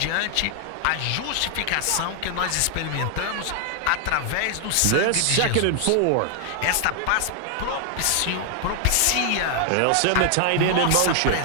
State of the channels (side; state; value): both; different; correlation 0.00